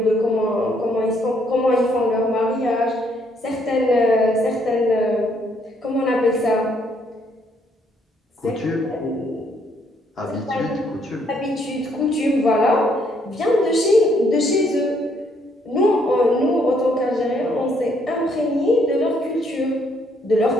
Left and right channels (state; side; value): normal; both; correlation 0.70